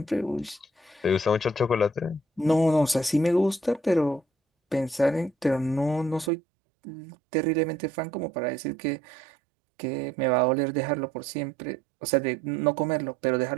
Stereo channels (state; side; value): drops out; left; at 6.3 s